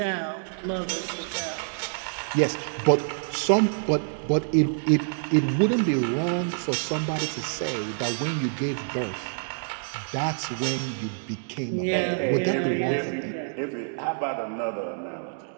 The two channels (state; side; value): silent; left; digital silence